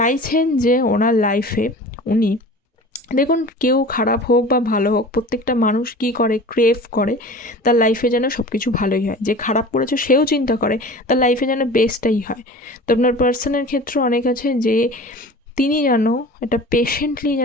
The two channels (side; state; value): both; normal; correlation 0.39